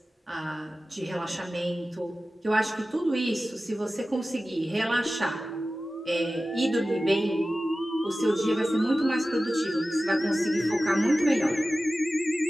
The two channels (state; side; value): normal; both; correlation 0.95